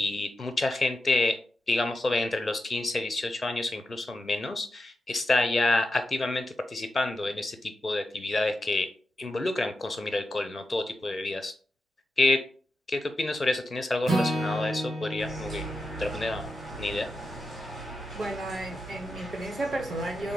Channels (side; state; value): both; normal; correlation 0.89